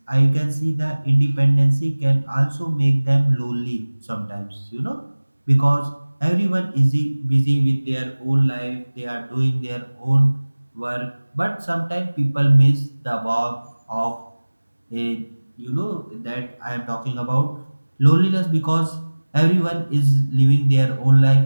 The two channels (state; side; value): inverted; both; correlation -1.00